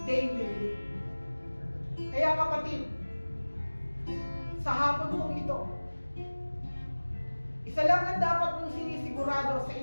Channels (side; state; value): both; inverted; correlation -1.00